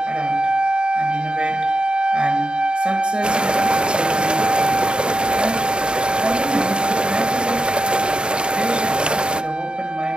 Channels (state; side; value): late; left; 0.050 ms